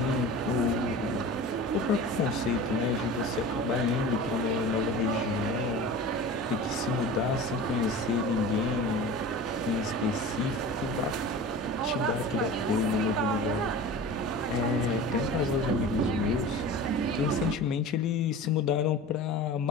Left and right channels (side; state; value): both; normal; correlation 0.36